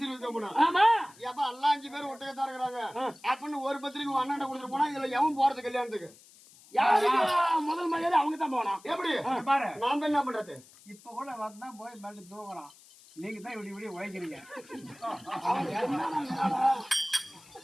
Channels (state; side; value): noise; left; hiss, 24 dB below the sound